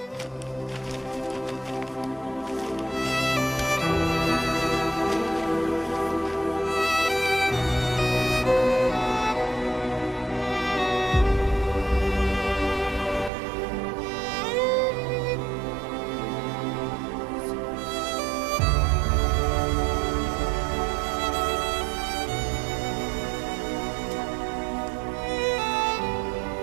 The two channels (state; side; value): drops out; left; at 13.3 s